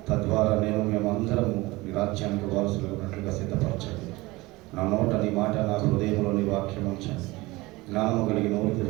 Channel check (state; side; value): quieter; left; 21.3 dB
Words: తద్వారా మేమందరము నీ రాజ్యానికి వారసులు ఉన్నట్లుగా సిద్ధపరచండి. నా నోట నీ మాట, నా హృదయంలో నీ వాక్యం ఉంచండి. జ్ఞానము కలిగి నోరు